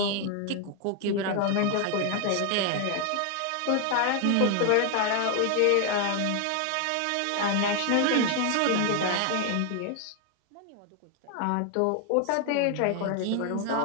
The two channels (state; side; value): different; both; correlation 0.01